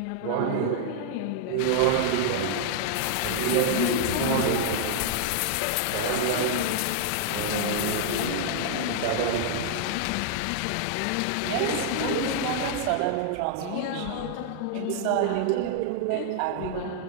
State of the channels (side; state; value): both; different; correlation -0.01